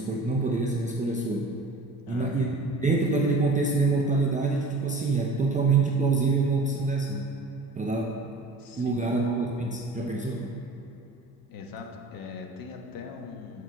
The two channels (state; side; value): quieter; left; 3.1 dB